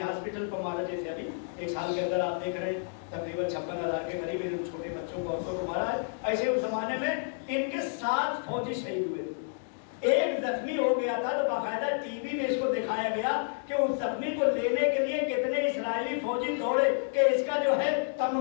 हॉस्पिटल पर मारा। जैसे अभी 1 साल के अंदर आप देख रहे हैं तकरीबन 56,000 के करीब इन छोटे बच्चों को, औरतों को मारा है। ऐसे उस जमाने में इनके 7 फौजी शहीद हुए थे, ایک زخمی ہو گیا تھا تو باقاعدہ ٹی وی میں اس کو دکھایا گیا کہ اس زخمی کو لینے کے لیے کتنے اسرائیلی فوجی دوڑے کہ اس کا جو ہے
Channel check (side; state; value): right; silent; digital silence